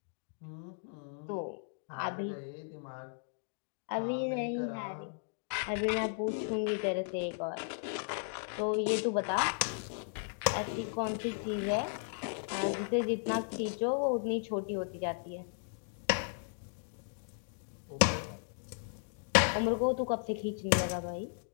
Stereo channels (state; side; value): silent; right; digital silence